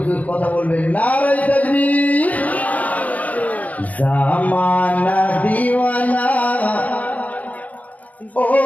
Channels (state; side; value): late; right; 0.074 ms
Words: কথা বলবেন, নারে তাকবীর। জামানা দিওয়ানা ও